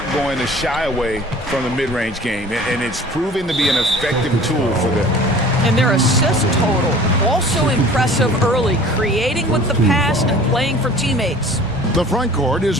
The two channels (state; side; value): normal; both; correlation 0.46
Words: going to shy away from the mid-range game, and it's proving to be an effective tool for them. And their assist total, also impressive early, creating with the pass and playing for teammates. The front court is